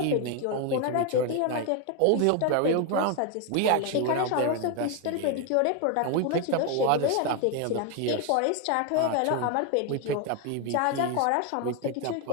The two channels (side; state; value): both; different; correlation 0.01